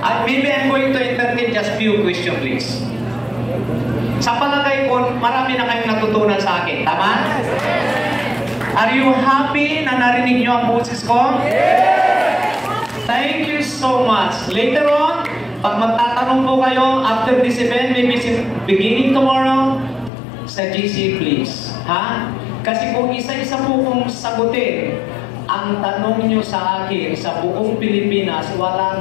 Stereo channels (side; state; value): right; drops out; at 20.1 s